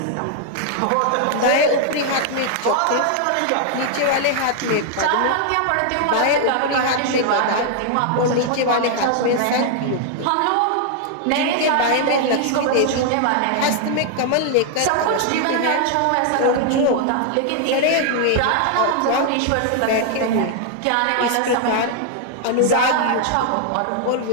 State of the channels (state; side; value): different; both; correlation 0.00